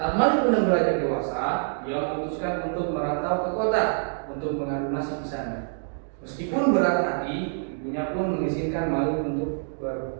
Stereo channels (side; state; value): left; silent; digital silence